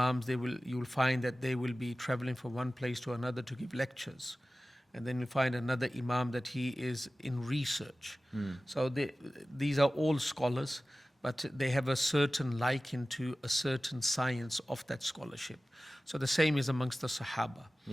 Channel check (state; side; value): normal; both; correlation 0.96